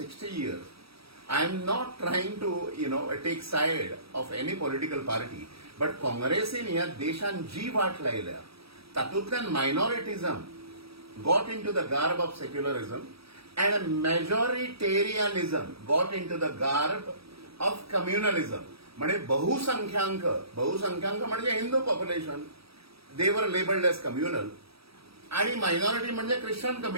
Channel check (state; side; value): late; left; 0.77 ms